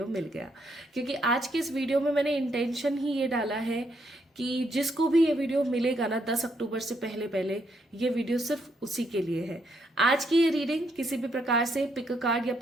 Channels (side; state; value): both; normal; correlation 0.75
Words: मिल गया, क्योंकि आज के इस वीडियो में मैंने इंटेंशन ही ये डाला है कि जिसको भी ये वीडियो मिलेगा ना 10 अक्टूबर से पहले पहले, ये वीडियो सिर्फ उसी के लिए है। आज की ये रीडिंग किसी भी प्रकार से पिक अ कार्ड या